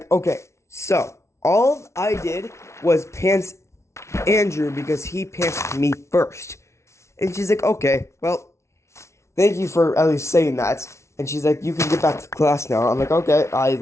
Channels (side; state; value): right; late; 0.13 ms